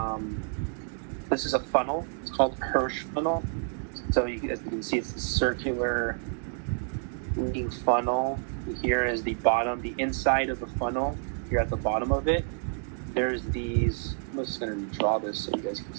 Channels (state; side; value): silent; left; 57 dB below the other